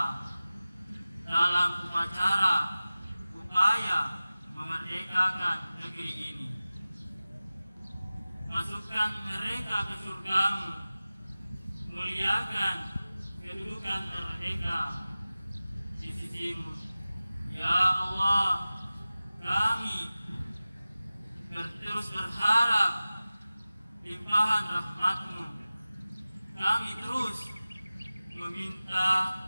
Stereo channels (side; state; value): both; inverted; correlation -0.97